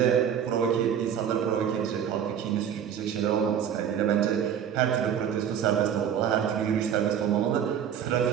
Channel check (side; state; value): left; quieter; 8.7 dB